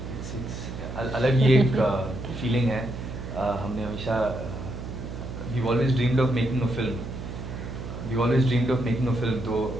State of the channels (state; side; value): noise; right; hum, 8 dB below the sound